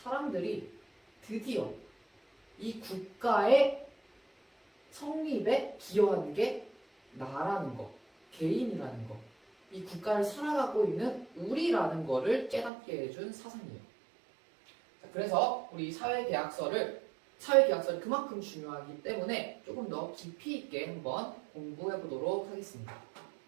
드디어 이 국가의 성립에 기여하는 게 나라는 거, 개인이라는 거, 이 국가를 살아가고 있는 우리라는 거를 깨닫게 해준 사상이에요. 자, 그래서 우리 사회계약서를 그만큼 중요하기 때문에 조금 더 깊이 있게 한번 공부해 보도록 하겠습니다.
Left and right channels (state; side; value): drops out; left; at 12.7 s